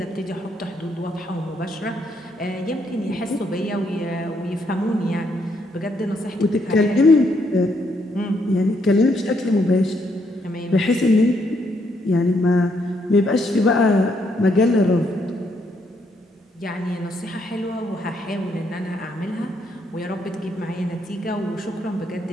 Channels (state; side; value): normal; both; correlation 0.74